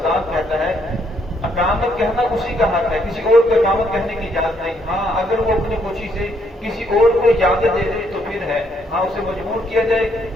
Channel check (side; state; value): both; normal; correlation 0.71